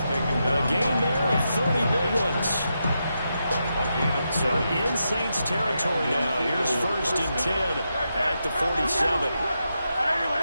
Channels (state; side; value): inverted; both; correlation -0.85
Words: taken down. A gain there of 30 big ones. So in Saints territory now. Here's 1st and 10 at the 47.